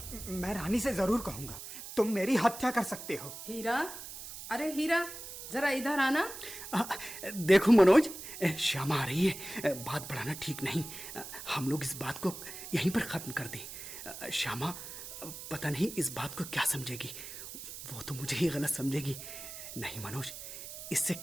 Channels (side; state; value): right; noise; hiss, 11 dB below the sound